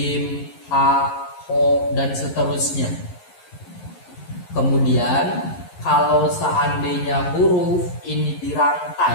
Ha, Ho, dan seterusnya. Kemudian kalau seandainya huruf ini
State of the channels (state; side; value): late; right; 11 ms